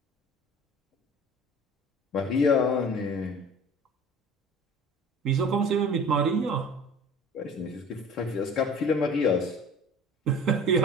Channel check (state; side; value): normal; both; correlation 0.42